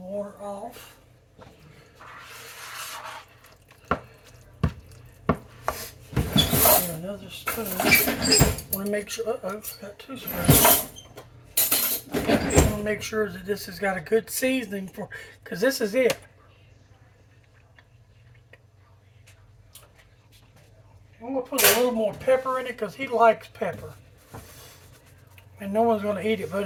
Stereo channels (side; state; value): both; identical; correlation 1.00